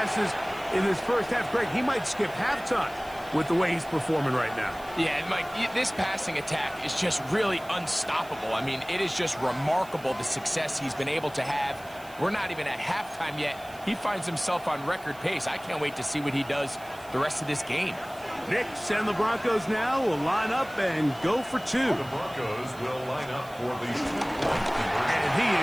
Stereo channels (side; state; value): right; noise; hiss, 22 dB below the sound